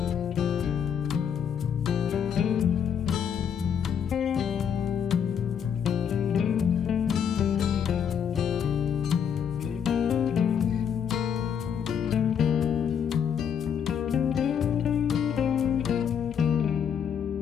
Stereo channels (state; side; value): quieter; right; 7.9 dB